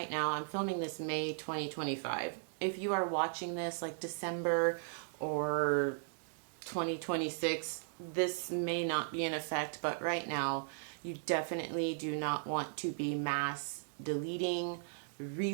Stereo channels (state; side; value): silent; left; digital silence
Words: now, I'm filming this May 2025. If you are watching this like December or 2026, this may not be in effect, but right now you definitely do not want to be mass deleting,